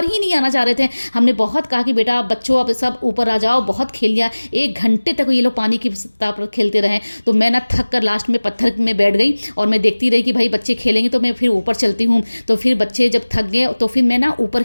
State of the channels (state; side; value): inverted; both; correlation -1.00